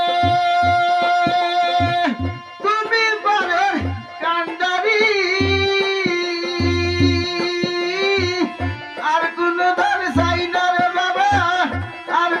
তুমি পারে কান্ডারি আর কোন ধর চাই না রে বাবা আর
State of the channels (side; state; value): both; identical; correlation 1.00